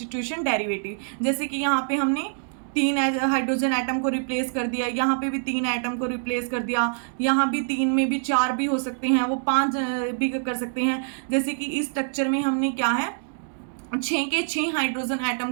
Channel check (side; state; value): left; silent; digital silence